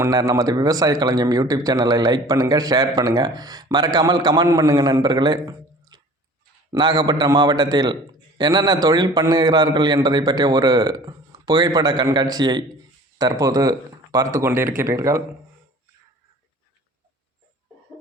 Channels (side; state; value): both; normal; correlation 0.46